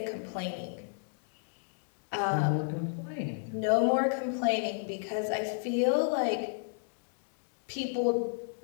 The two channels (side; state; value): right; silent; digital silence